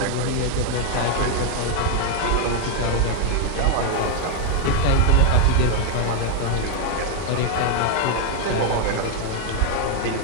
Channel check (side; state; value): both; different; correlation 0.00